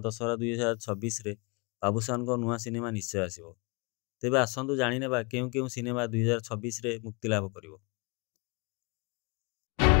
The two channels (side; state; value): right; quieter; 30.3 dB